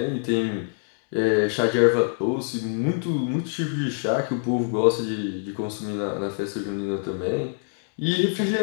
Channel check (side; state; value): right; silent; 62 dB below the other